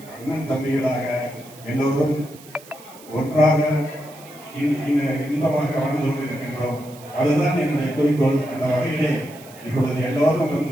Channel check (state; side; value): noise; right; hiss, 21 dB below the sound